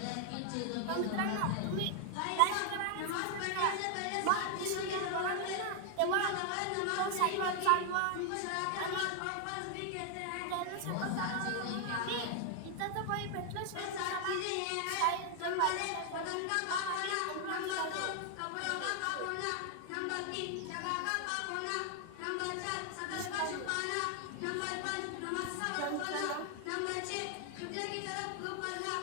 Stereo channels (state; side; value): different; both; correlation 0.00